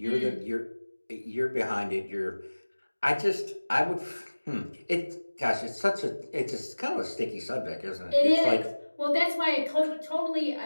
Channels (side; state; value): both; inverted; correlation -1.00